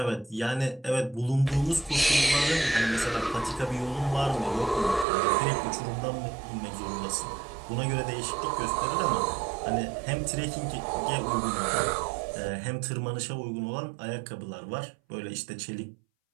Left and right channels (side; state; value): left; drops out; at 5.1 s